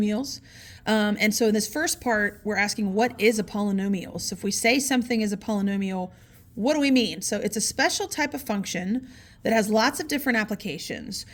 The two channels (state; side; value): identical; both; correlation 1.00